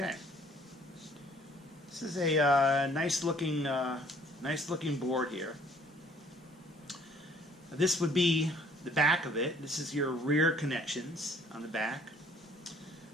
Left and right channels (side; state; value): both; normal; correlation 0.58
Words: This is a nice looking board here. This would be the back of it. This is your rear connections on the back.